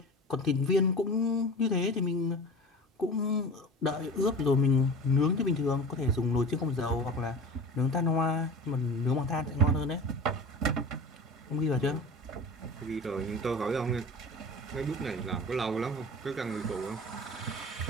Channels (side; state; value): both; normal; correlation 0.35